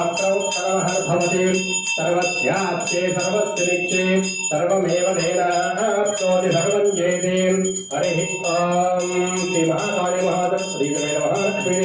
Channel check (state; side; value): identical; both; correlation 1.00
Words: सर्वहर्भवते सर्वस्याप्ते सर्वस्य नित्ये सर्वमेव तेनाप्नोति सर्वं जयते हरिः ॐ श्रीमहाकाली महादत्तश्रीदेवे नमः